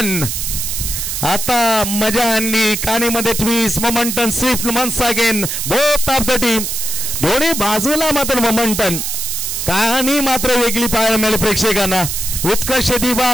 आता मजा आणली. कानीमध्ये twist momentum swift once again both of the team. दोन्ही बाजूला मात्र मोमेंटम. कहाणी मात्र वेगळी पाहायला मिळाली प्रेक्षकांना. उत्कर्ष दिवा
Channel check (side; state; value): right; noise; hiss, 3 dB below the sound